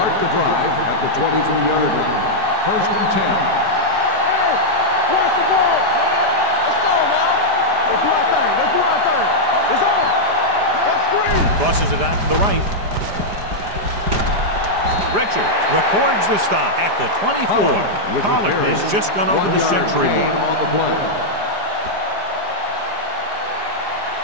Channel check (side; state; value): left; late; 5.0 ms